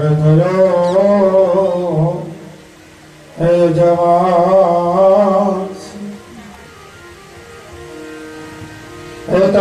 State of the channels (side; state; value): both; identical; correlation 1.00